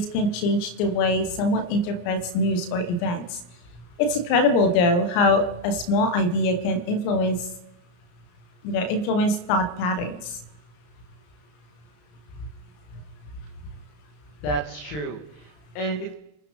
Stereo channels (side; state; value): right; late; 34 ms